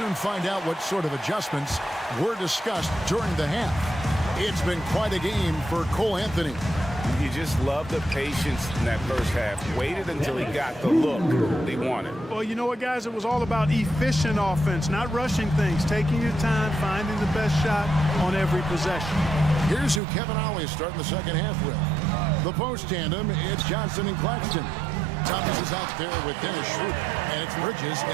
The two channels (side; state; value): left; drops out; at 20.0 s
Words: find out what sort of adjustments were discussed during the half. It's been quite a game for Cole Anthony. You just love the patience in that first half. Waited until he got the look he wanted. Well, you know what, guys? It was all about efficient offense, not rushing things, taking your time, finding the best shot on every possession. Here's who Kevin Ollie is starting the second half with. The post tandem, it's Johnson and Claxton. Thomas is out there with Dennis Schroeder, and it's Bridges